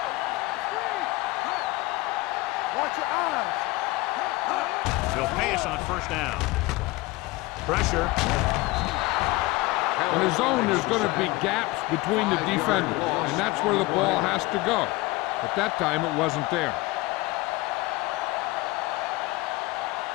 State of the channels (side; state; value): right; quieter; 21.1 dB